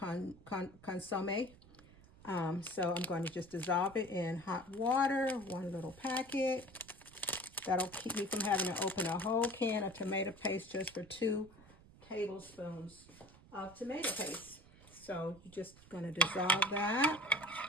consomme. So I'm going to just dissolve it in hot water, one little packet. That'll keep me from having to open a whole can of tomato paste just for 2 tablespoons of tomato paste. So you're just going to dissolve that.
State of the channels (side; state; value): right; noise; rumble, 23 dB below the sound